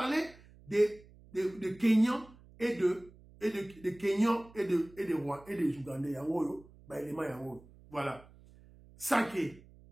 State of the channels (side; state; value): right; noise; hum, 24 dB below the sound